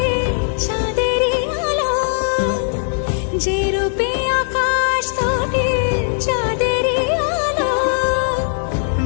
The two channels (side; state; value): right; silent; 67 dB below the other